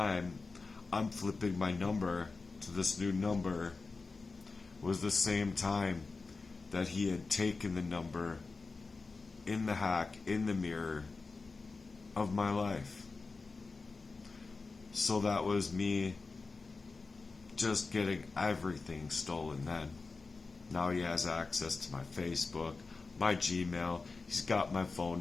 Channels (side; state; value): right; quieter; 4.1 dB